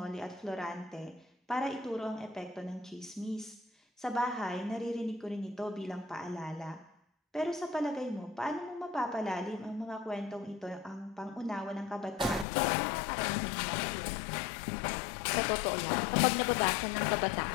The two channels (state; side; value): drops out; right; at 12.5 s